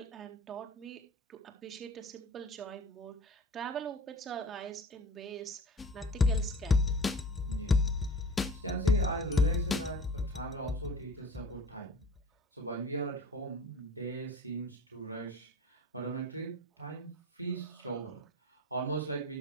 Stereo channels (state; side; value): normal; both; correlation 0.41